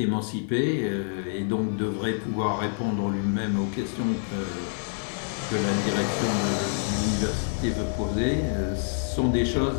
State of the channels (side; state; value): right; silent; digital silence